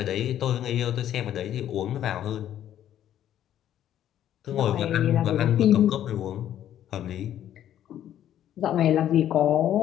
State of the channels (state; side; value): quieter; right; 11.2 dB